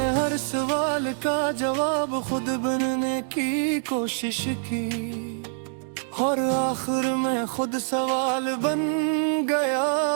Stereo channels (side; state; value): left; silent; digital silence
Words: हर सवाल का जवाब खुद बनने की कोशिश की और आखिर में खुद सवाल बन गया।